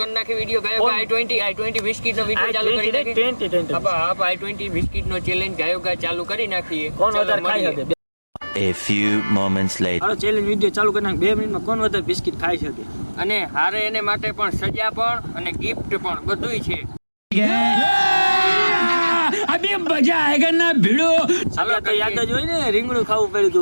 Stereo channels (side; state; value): both; inverted; correlation -1.00